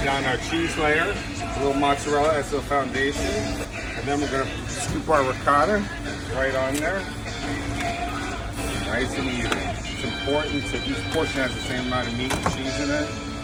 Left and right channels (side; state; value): both; identical; correlation 1.00